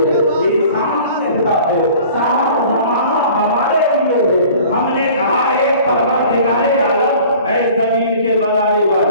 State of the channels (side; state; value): both; inverted; correlation -0.47